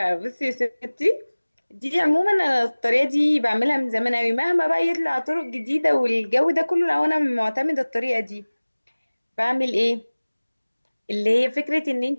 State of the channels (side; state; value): both; inverted; correlation -1.00